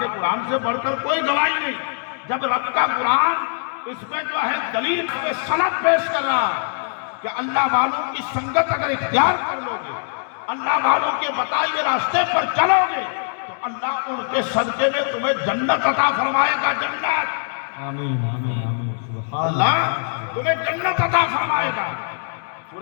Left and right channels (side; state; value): right; silent; 64 dB below the other